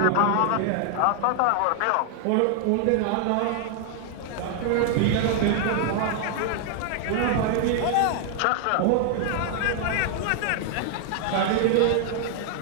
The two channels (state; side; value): different; both; correlation 0.00